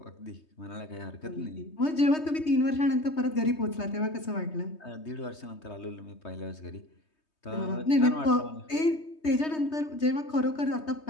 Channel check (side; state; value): right; late; 3.2 ms